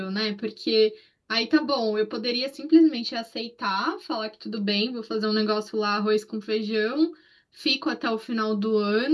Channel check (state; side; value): identical; both; correlation 1.00